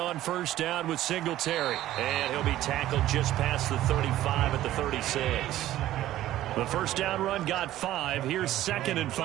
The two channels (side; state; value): left; quieter; 14.0 dB